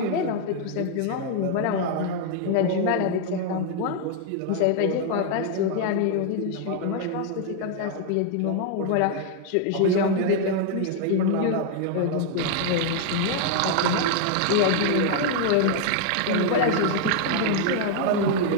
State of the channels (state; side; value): different; both; correlation 0.00